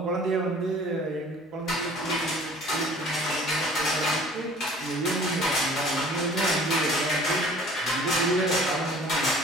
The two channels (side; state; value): both; normal; correlation 0.50